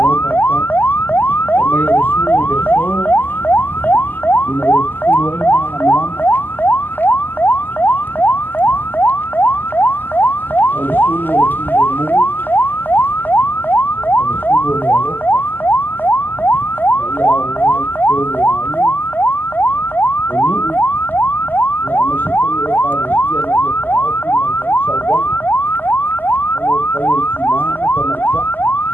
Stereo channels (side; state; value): right; late; 0.089 ms